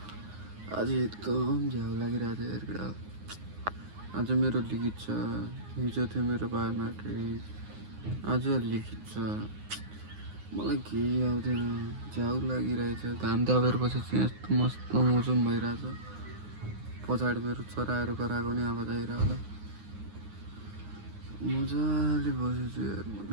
एकदम झ्याउ लागिरहेको थियो हेर्दा। आज मेरो लिखित छ, हिजो थियो मेरो बायोमेट्रिक, आज लिखित छ। मलाई केही आउँदैन, झ्याउ लागिरहेछ। घाम तापेर बसेपछि यस्तो मस्त मौसम भइरहेछ। पछाडि मेरो चराहरू कराएको नि आवाज आइरह्यो होला। मजाले बसेछु यार म त।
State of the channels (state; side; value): late; left; 9.6 ms